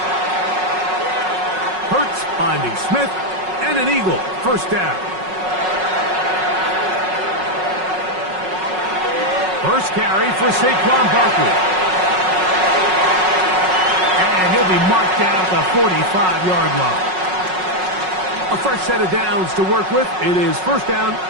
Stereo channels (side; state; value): left; late; 5.4 ms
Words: Hurts finding Smith and an Eagle first down. First carry for Saquon Barkley. And he'll be marked down at the 45-yard line. A fresh set of downs to work with. It is first down